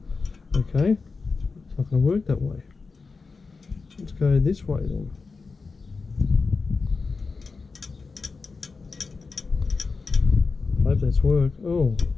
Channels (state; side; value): quieter; right; 4.4 dB